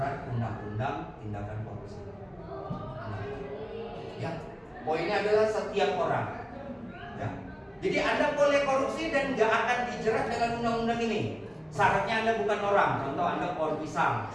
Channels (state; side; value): identical; both; correlation 1.00